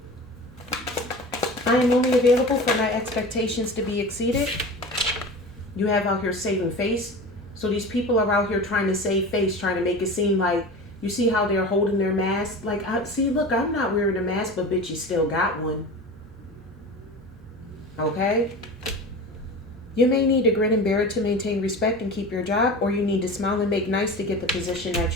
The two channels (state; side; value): normal; both; correlation 0.32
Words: I am only available for my expectations to be exceeded. You have out here saving face. So these people are out here trying to save face, trying to make it seem like, you see how they're holding their mask? Like, see, look, I'm not wearing a mask, but bitch, you still got one. Okay? You may need to grin and bear it to maintain respect and keep your job, or you need to smile and make nice to get the position